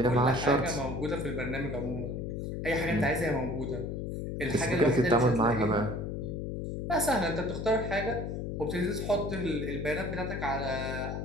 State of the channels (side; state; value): left; noise; hum, 4 dB below the sound